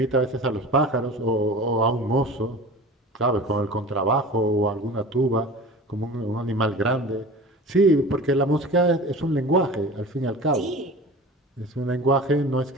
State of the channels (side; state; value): both; normal; correlation 0.37